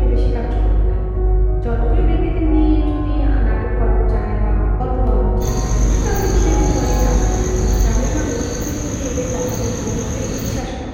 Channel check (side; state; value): both; identical; correlation 1.00